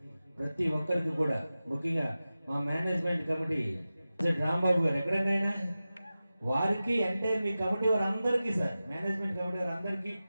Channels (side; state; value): both; inverted; correlation -0.95